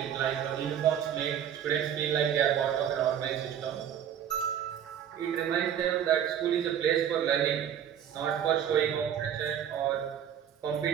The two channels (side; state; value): left; quieter; 9.4 dB